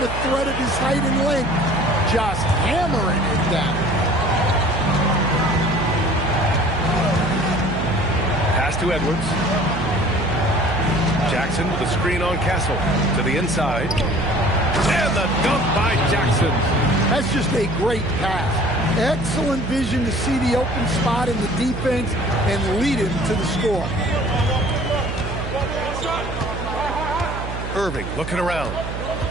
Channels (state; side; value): noise; right; hum, 7 dB below the sound